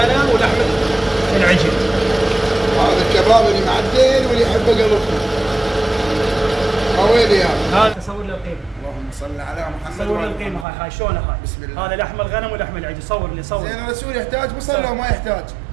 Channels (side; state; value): left; drops out; at 10.7 s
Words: ولحم العجل. هذا الكباب اللي معدل واللي يحبه قلبكم. قوي يا هذا صور له القيمه. اللهم صل على محمد. صور له القيمه. هاي شلونها هاي. بسم الله. هذا لحم الغنم ولحم العجل. صور لي صور. زين الرسول يحتاج بصل لو ما يحتاج؟